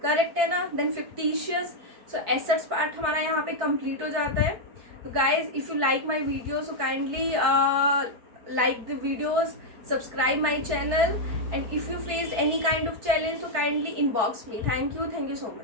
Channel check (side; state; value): left; late; 4.5 ms